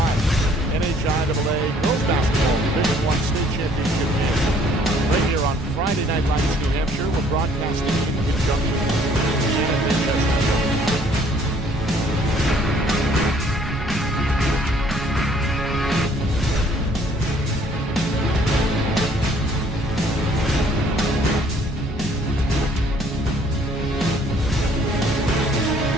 NHIAA Girls Basketball Division I State Championship game. Right here on Friday Night Lights, New Hampshire. We're broadcasting in conjunction with CNN.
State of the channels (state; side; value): normal; both; correlation 0.60